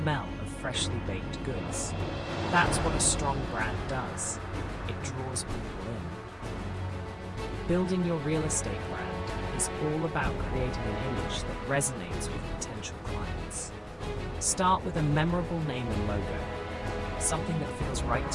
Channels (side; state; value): both; identical; correlation 1.00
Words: of freshly baked goods. That's what a strong brand does. It draws people in. Building your real estate brand is all about creating an image that resonates with potential clients. Start with a memorable name and logo, something that feels right